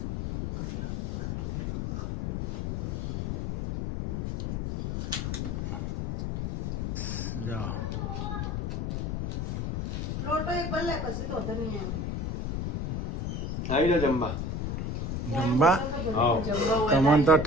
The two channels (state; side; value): noise; left; rumble, 2 dB below the sound